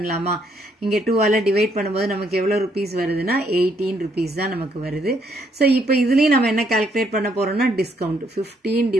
இங்கே 2ஆல் டிவைட் பண்ணும்போது நமக்கு எவ்வளோ ருபீஸ் வருதுன்னா 18 rupees தான் நமக்கு வருது. ஸோ இப்போ இதுலேயும் நம்ம என்ன கால்குலேட் பண்ண போகிறோம்னா discount 15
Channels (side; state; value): both; normal; correlation 0.71